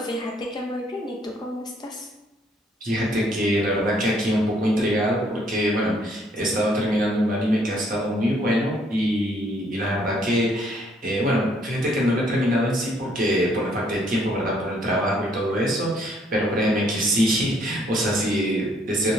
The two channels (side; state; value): both; normal; correlation 0.66